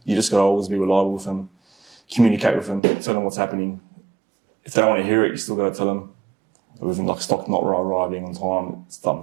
always be reliable with them, communicate with them, tell them what's happening. If they don't want to hear it, you still got to tell them. Even like stock not arriving on time,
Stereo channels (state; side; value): drops out; left; at 2.8 s